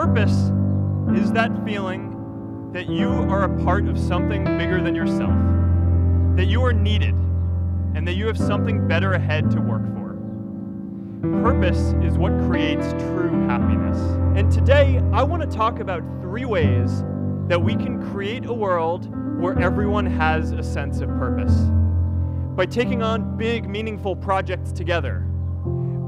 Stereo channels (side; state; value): both; identical; correlation 1.00